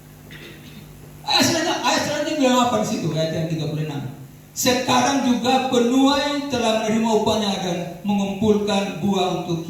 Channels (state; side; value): identical; both; correlation 1.00